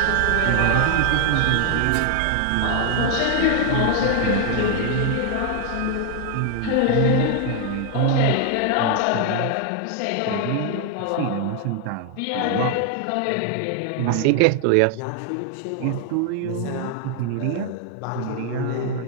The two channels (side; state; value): both; different; correlation 0.00